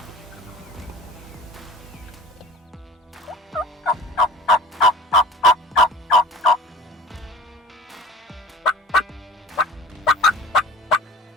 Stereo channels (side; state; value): both; normal; correlation 0.41